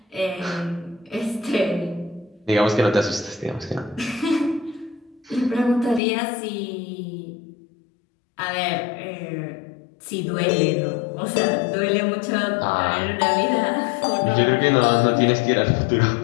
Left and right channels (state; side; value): drops out; right; at 6.0 s